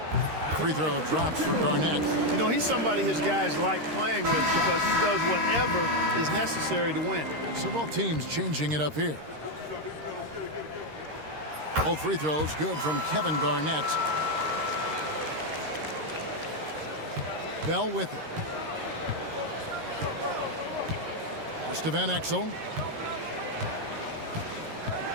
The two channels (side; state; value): left; late; 13 ms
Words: free throw drops for Garnett. You know, he's somebody his guys like playing with because he does whatever is necessary to win. So both teams changing it up here. Both free throws good from Kevin Garnett. Bell with it. Pass to Van Exel.